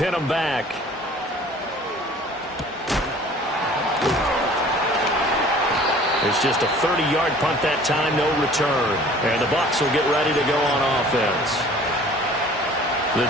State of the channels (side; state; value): both; normal; correlation 0.49